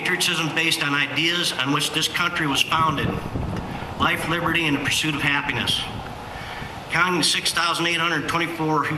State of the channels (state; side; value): identical; both; correlation 1.00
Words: based on ideas on which this country was founded. Life, liberty, and the pursuit of happiness. Counting the 6,824